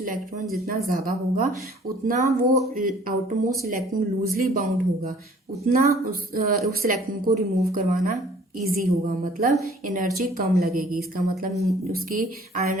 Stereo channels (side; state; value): both; normal; correlation 0.54